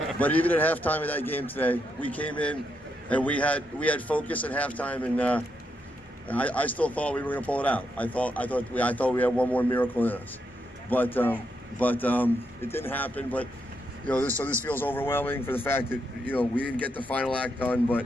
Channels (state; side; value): normal; both; correlation 0.81